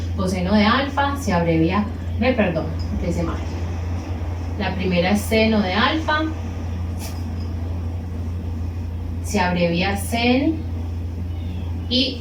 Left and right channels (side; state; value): both; identical; correlation 1.00